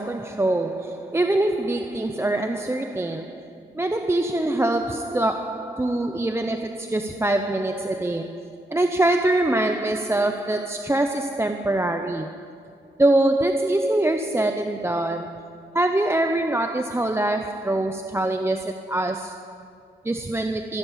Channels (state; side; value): normal; both; correlation 0.81